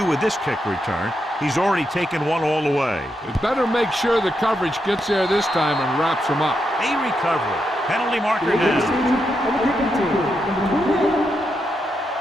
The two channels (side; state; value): both; normal; correlation 0.83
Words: with this kick return. He's already taken one all the way. It better make sure the coverage gets there this time and wraps him up. A recovery. Penalty marker down.